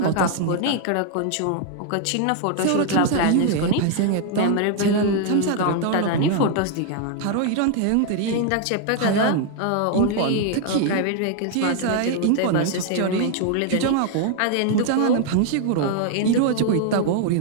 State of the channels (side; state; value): both; different; correlation 0.00